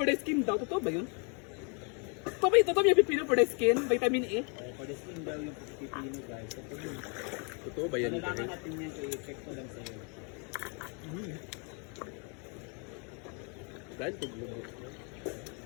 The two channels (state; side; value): quieter; right; 36.2 dB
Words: the skin daw. Totoo ba yun? Totoo ba yung pipino for the skin? Vitamin E? for the skin daw yung pipino guys. So, pag yun, Totoo ba yan? kailangan natin yan i-check ko lang sa'yo. Dahil kung lumot.